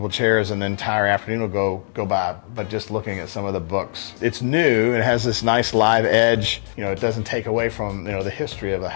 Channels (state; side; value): silent; right; digital silence